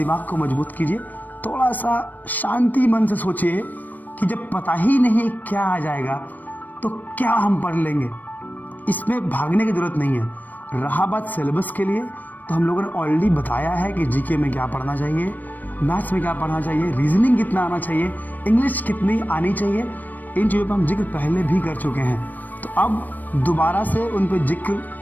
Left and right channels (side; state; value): right; late; 0.086 ms